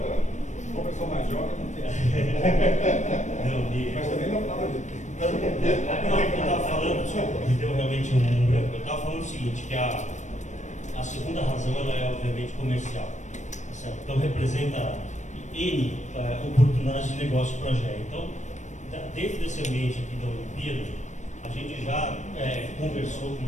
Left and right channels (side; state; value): right; late; 0.35 ms